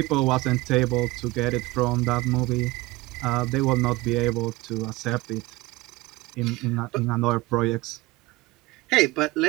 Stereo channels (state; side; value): quieter; left; 20.6 dB